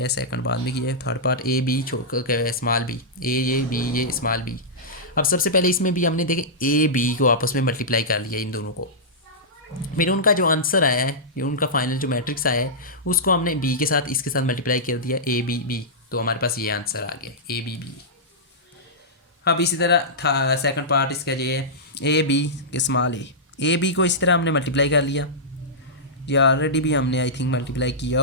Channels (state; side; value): normal; both; correlation -0.13